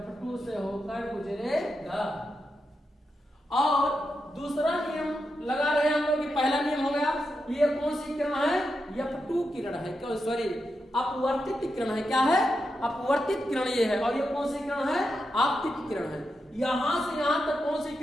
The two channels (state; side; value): normal; both; correlation 0.87